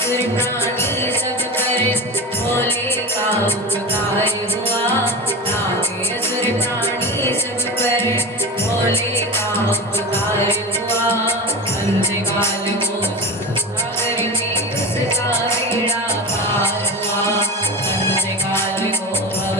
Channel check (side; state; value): both; normal; correlation 0.25